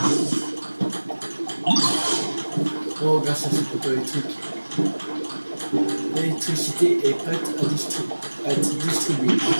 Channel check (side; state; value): both; inverted; correlation -1.00